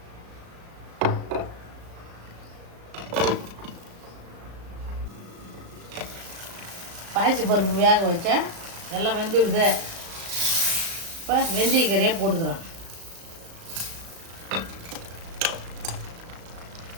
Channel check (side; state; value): left; late; 35 ms